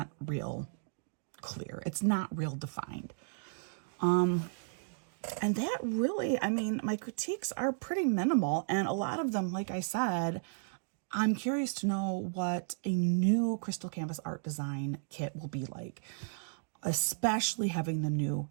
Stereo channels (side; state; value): left; silent; digital silence